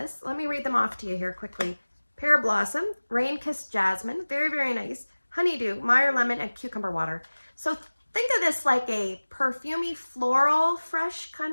Let me read them off to you here quickly. Pear Blossom, Rain Kissed Jasmine, very, very nice. Honeydew, Meyer Lemon, and Cucumber Water. So think of this like a perfumey, floral, fresh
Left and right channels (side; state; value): both; inverted; correlation -1.00